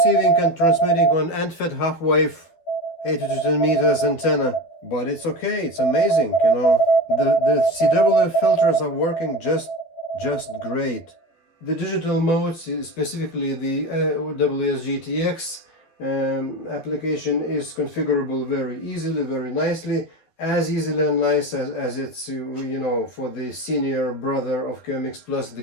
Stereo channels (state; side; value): late; right; 12 ms